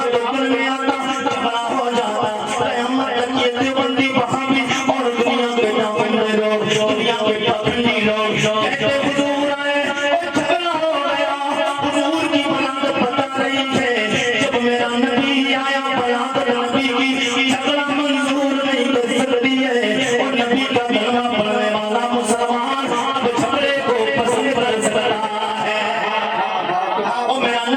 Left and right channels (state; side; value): identical; both; correlation 1.00